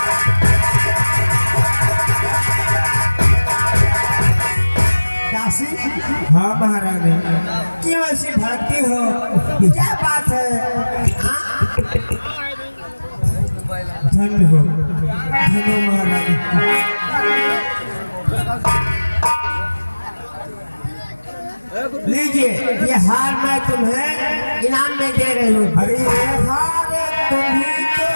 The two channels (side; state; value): both; inverted; correlation -1.00